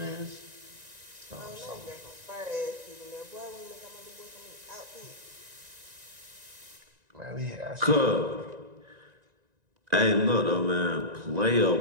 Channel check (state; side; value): late; left; 1.9 ms